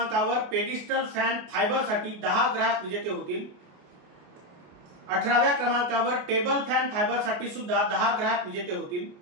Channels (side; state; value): left; late; 28 ms